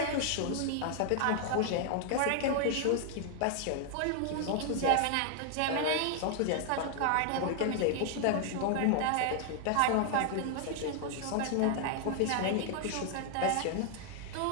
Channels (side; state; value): both; different; correlation 0.00